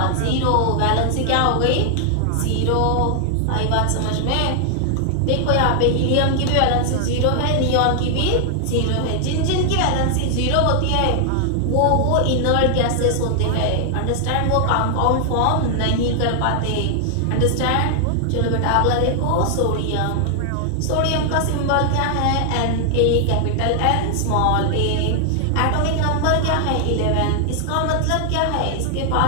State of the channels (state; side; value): different; both; correlation 0.00